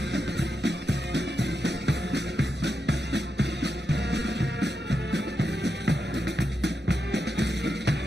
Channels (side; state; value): both; normal; correlation 0.87